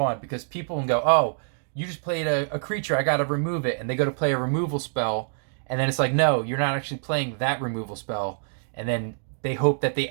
because people can go, oh, you just played a creature, I got to remove it. And they go to play a removal spell, and then it's like, no, you're not actually playing that removal spell. And then they hope that they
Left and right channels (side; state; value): left; silent; digital silence